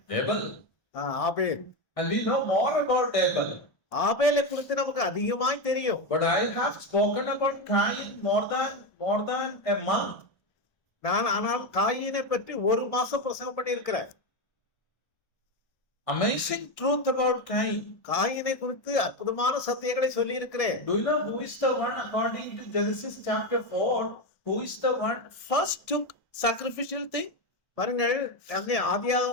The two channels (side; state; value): right; late; 1.6 ms